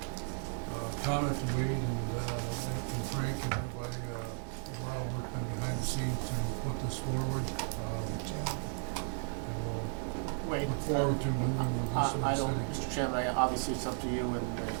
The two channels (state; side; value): silent; left; 55 dB below the other